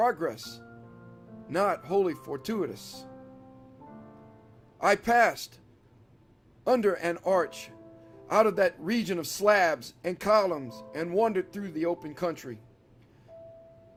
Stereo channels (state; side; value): identical; both; correlation 1.00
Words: not wholly fortuitous. I passed under an arch out of that region of slabs and columns and wandered through the open country,